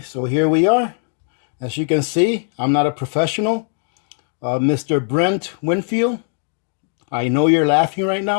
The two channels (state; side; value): silent; right; 57 dB below the other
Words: so here we are. As you can see, I'm not a professional. Mr. Brent Winfield, I know you're laughing right